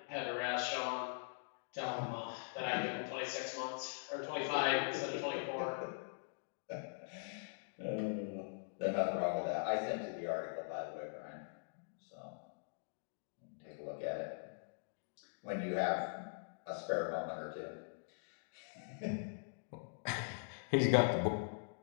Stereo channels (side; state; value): right; silent; digital silence